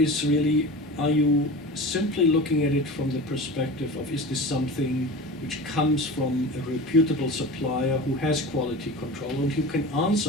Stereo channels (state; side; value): normal; both; correlation 0.32